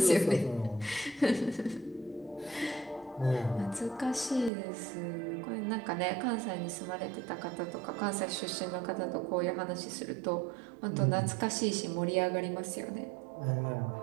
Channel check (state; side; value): drops out; left; at 4.5 s